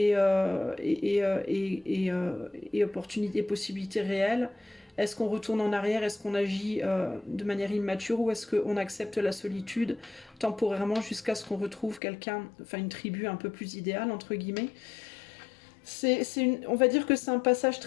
opportunité, possibilités réelles. Est-ce qu'on retourne en arrière? Est-ce qu'on agit de manière immature? Ou est-ce qu'on accepte la solitude temporairement jusqu'à ce qu'on retrouve quelqu'un, enfin une tribu un peu plus idéale, entre guillemets? On va dire que c'est un passage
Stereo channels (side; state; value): right; drops out; at 12.0 s